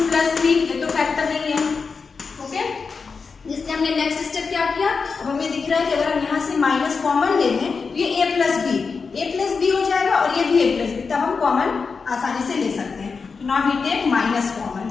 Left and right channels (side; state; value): right; quieter; 5.0 dB